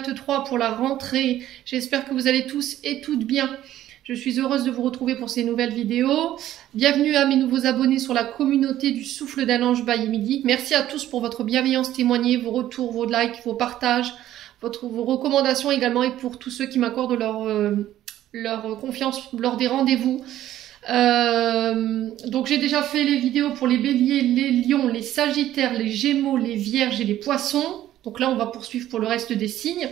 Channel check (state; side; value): quieter; left; 13.0 dB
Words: pour la rentrée. J'espère que vous allez tous et toutes bien. Je suis heureuse de vous retrouver pour ces nouvelles vidéos. Bienvenue à mes nouveaux abonnés sur la communauté du Souffle d'un Ange by Midi. Merci à tous pour votre bienveillance témoignée, vos retours, vos likes, vos partages, vos recommandations également et pour tous ceux qui m'accordent leur confiance lors des rendez-vous. Donc j'ai déjà fait les vidéos pour les béliers, les lions, les sagittaires, les gémeaux, les vierges et les poissons. Donc là on va poursuivre pour le reste des signes.